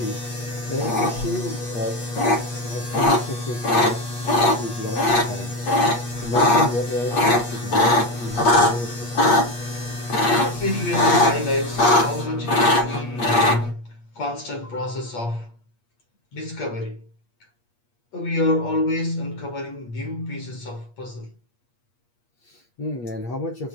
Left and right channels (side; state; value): right; late; 8.5 ms